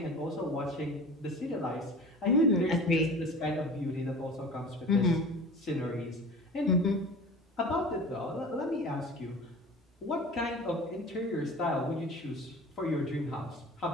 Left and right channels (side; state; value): both; normal; correlation 0.39